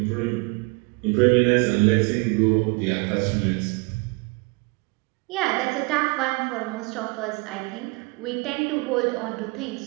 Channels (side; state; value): left; quieter; 28.1 dB